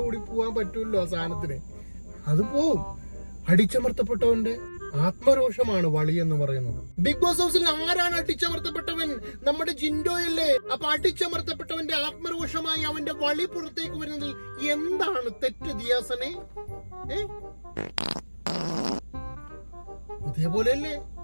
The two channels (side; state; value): both; inverted; correlation -1.00